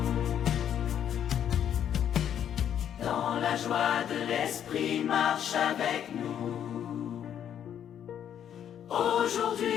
Dans la joie de l'esprit, marche avec nous.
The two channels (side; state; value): right; quieter; 9.5 dB